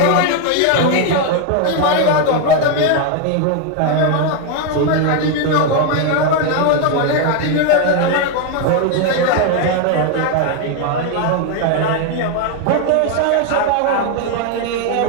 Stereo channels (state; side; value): different; both; correlation 0.01